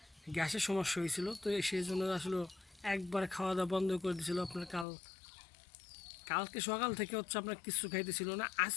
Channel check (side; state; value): right; drops out; at 4.9 s